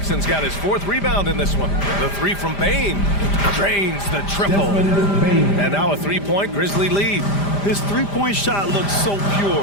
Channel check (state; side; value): late; right; 5.0 ms